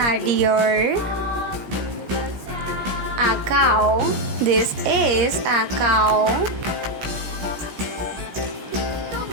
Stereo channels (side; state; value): left; late; 17 ms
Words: deer. A cow. This is a cow.